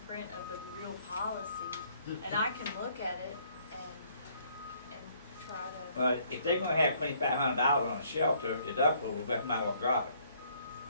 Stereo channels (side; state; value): both; inverted; correlation -0.65